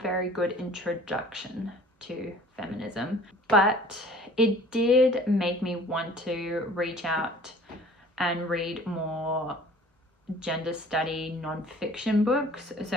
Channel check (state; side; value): normal; both; correlation 0.49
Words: good introduction to feminism, but it did make me want to reach out and read more gender study non-fiction books. So